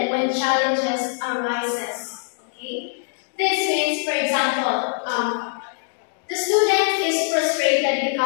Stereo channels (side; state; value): right; silent; digital silence